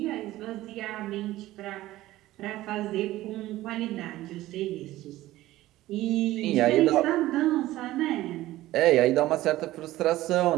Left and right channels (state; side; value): quieter; left; 16.1 dB